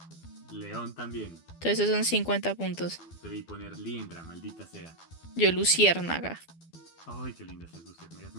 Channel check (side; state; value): right; late; 12 ms